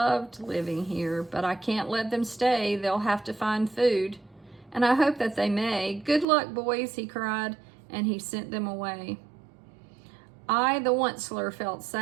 living here, but I can't let them stay. They'll have to find food, and I hope that they may. "Good luck, boys," he cried, and he sent them away. I, the Onceler, felt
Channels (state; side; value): drops out; left; at 6.2 s